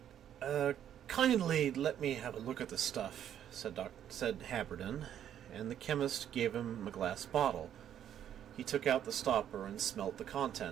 Kindly let me have a look at the stuff," said Haberden, and the chemist gave him a glass bottle. He took out the stopper and smelt the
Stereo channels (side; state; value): left; quieter; 10.1 dB